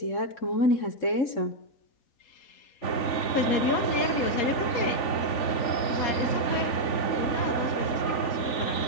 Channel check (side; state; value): right; late; 3.5 ms